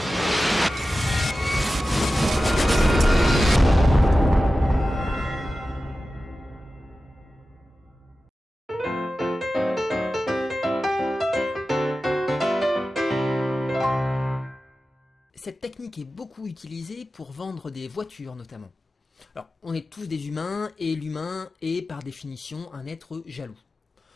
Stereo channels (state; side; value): normal; both; correlation 0.94